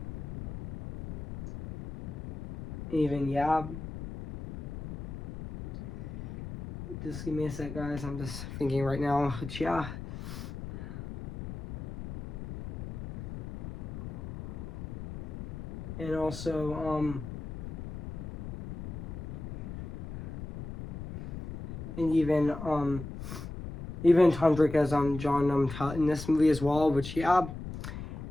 even just give me a sec, guys. I'm just thinking right now. But yeah. And also and even Tom Drake as John Tutt in this movie as well, which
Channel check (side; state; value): left; noise; rumble, 9 dB below the sound